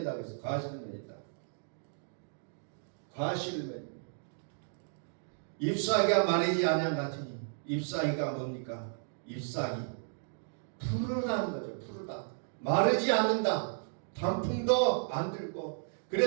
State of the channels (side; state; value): left; silent; digital silence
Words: 그래서 과실을 맺는다. 과실을 맺는다. 잎사귀가 마르지 아니한 같으니 잎사귀가 뭡니까? 잎사귀 푸르다는 거죠. 푸르다. 마르지 않는다. 단풍도 안 들고